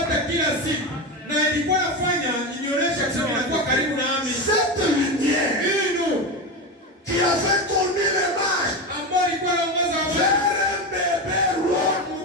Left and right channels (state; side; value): normal; both; correlation 0.18